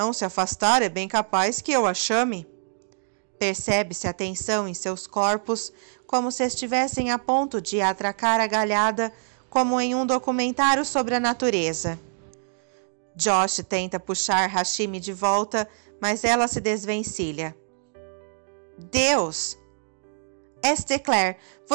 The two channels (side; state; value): left; silent; digital silence